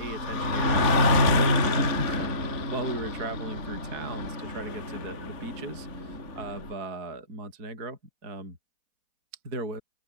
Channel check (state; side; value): late; left; 4.1 ms